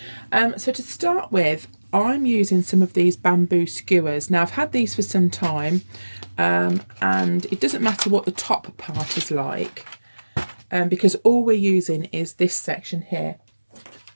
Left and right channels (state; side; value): inverted; both; correlation -1.00